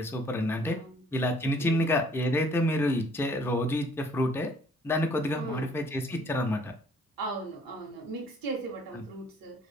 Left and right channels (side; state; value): both; normal; correlation 0.59